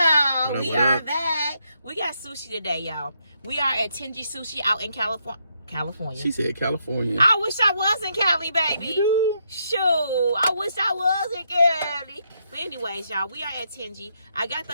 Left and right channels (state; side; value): inverted; both; correlation -0.77